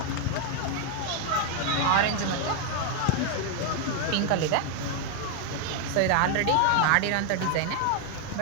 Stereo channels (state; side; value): different; both; correlation 0.01